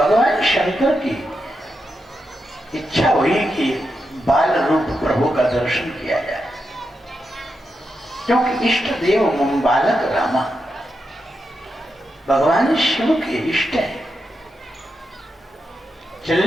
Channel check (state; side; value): normal; both; correlation 0.86